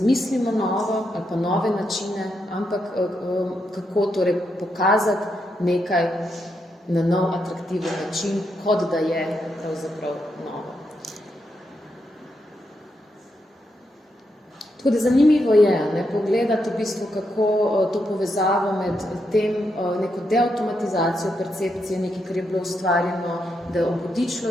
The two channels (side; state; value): both; normal; correlation 0.82